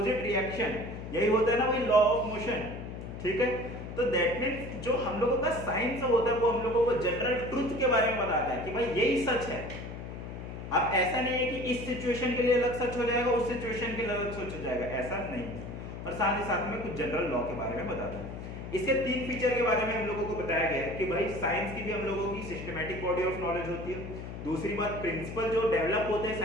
reaction, यही होता है ना भाई लॉ ऑफ मोशन, ठीक है। तो दैट मींस जो हम लोगों का साइंस होता है वो हम लोगों को जनरल ट्रुथ के बारे में बताता है कि भाई यही सच है। अब ऐसा नहीं है कि इस सिचुएशन के लिए अलग सच हो जाएगा, उस सिचुएशन के लिए अलग सच हो जाएगा, ऐसा नहीं है। और साथ ही साथ में कुछ जनरल लॉ के बारे में बताता है। इसके 3 फीचर के बारे में हम लोगों को बताया गया है कि भाई साइंस की भी हम लोगों की सिस्टमैटिक बॉडी ऑफ नॉलेज होती है। दूसरी बात, प्रिंसिपल जो डेवलप होते हैं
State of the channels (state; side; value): noise; left; hum, 9 dB below the sound